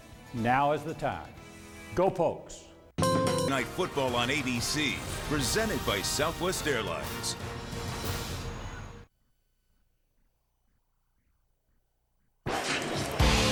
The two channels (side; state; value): both; identical; correlation 1.00